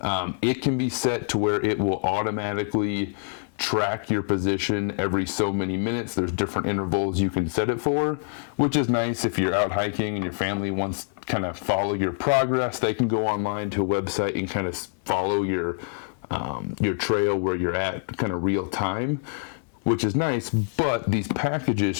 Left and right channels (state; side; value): silent; right; digital silence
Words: it can be set to where it will automatically track your position every so many minutes. There's different intervals you can set it for, which is nice if you're out hiking and your family wants to kind of follow your progress. They can go online to a website and kind of follow your trail where you're at kind of real time, which is nice. But these